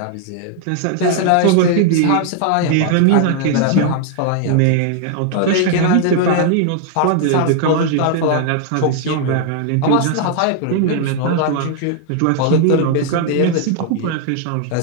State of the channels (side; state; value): both; different; correlation 0.00